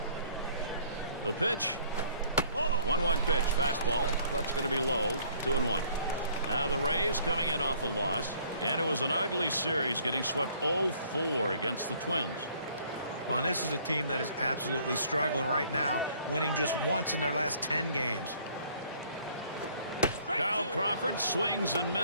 The pitch. 1-1 pitch. Fastball. That's going to be low. 2-1. Now the Rays coming in off a loss. And it was an ugly series, getting swept 0-4 against the Twins. Well, this is a team that is absolutely struggling right now, winning just once in their last 10 games. Kyle Crawford swings and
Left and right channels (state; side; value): inverted; both; correlation -0.59